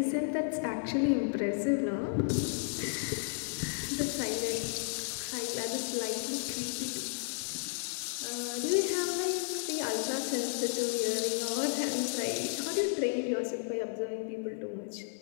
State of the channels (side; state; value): right; silent; 56 dB below the other